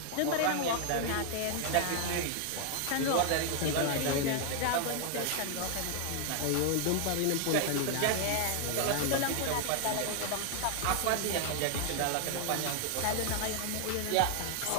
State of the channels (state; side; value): different; both; correlation 0.00